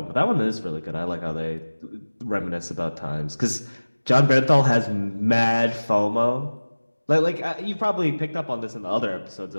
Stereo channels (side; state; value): both; inverted; correlation -1.00